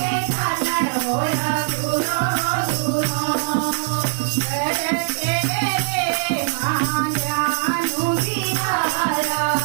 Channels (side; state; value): left; silent; digital silence